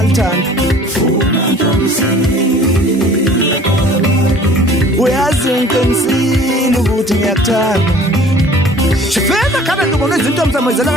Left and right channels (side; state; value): both; normal; correlation 0.49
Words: uyazi ngiqinisile ukuthi ngiyakuthanda Shifeza khana ngibona izinto msamezela